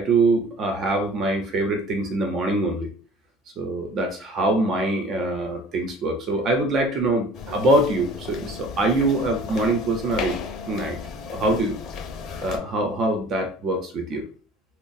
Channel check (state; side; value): normal; both; correlation 0.48